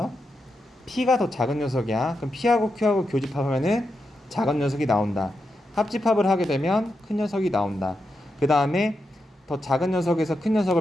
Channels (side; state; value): both; normal; correlation 0.86